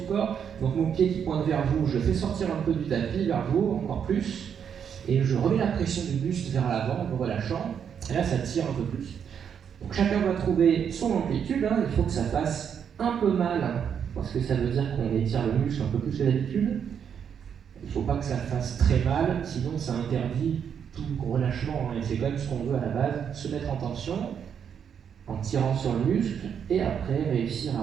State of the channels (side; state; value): left; quieter; 7.8 dB